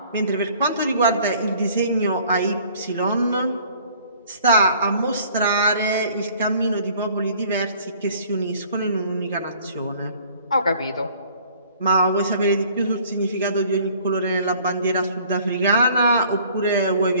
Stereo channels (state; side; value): inverted; both; correlation -0.55